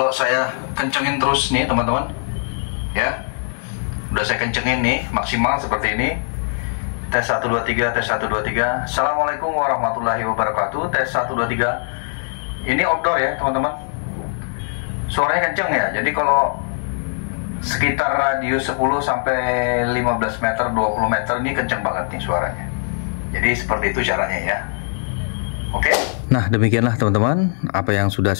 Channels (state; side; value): silent; right; digital silence